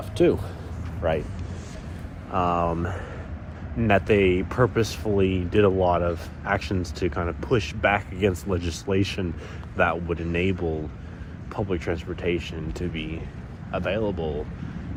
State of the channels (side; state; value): both; identical; correlation 1.00